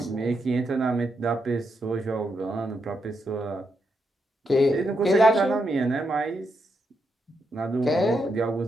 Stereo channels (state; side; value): normal; both; correlation 0.82